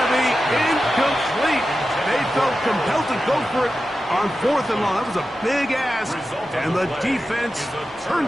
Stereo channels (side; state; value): both; normal; correlation 0.92